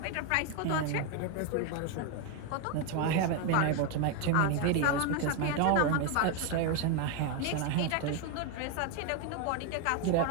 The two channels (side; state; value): both; different; correlation 0.01